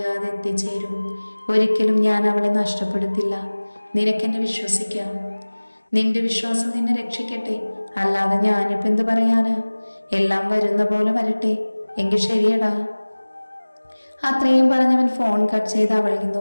എത്തിച്ചേരും. ഒരിക്കലും ഞാൻ അവളെ നഷ്ടപ്പെടുത്തില്ല. നിനക്കെന്നെ വിശ്വസിക്കാം. നിന്റെ വിശ്വാസം നിന്നെ രക്ഷിക്കട്ടെ. അല്ലാതെ ഞാനിപ്പോൾ എന്ത് പറയാനാ? എല്ലാം വരുന്ന പോലെ വരട്ടെ. എങ്കിൽ ശരിയടാ. അത്രയും പറഞ്ഞവൻ ഫോൺ കട്ട് ചെയ്ത് അവളെ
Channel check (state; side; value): inverted; both; correlation -1.00